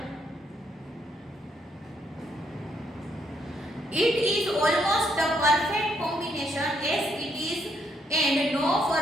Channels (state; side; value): normal; both; correlation 0.74